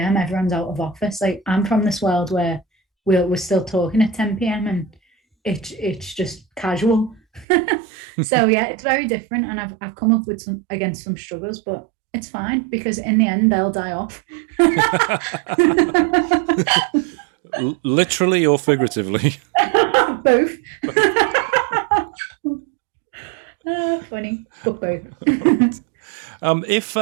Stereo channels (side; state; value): left; drops out; at 7.5 s